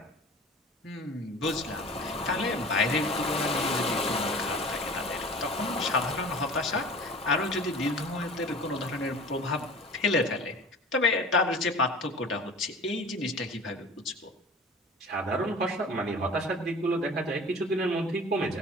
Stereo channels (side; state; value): both; normal; correlation 0.40